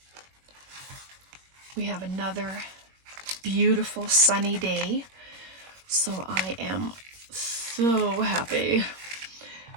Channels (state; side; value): late; left; 21 ms